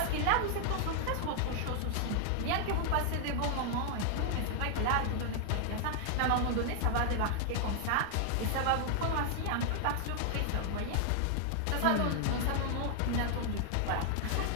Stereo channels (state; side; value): different; both; correlation 0.00